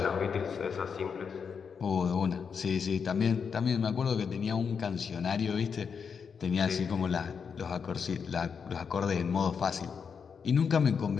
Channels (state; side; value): quieter; right; 6.3 dB